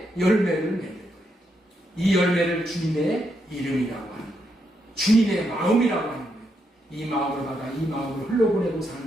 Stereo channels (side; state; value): both; normal; correlation 0.80